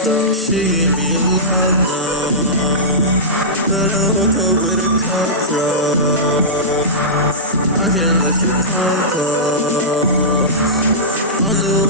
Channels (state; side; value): normal; both; correlation -0.16